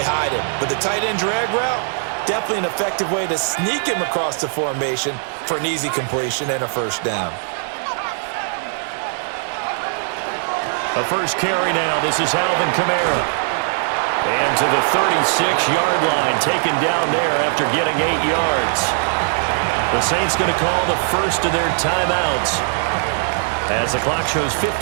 hide him. With the tight end drag route, definitely an effective way to sneak him across the formation for an easy completion and a first down. A first carry now. This is Alvin Kamara. And to the 36-yard line, taken down there after getting 8 yards. The Saints going to call the first of their timeouts as the clock shows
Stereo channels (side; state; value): left; silent; 65 dB below the other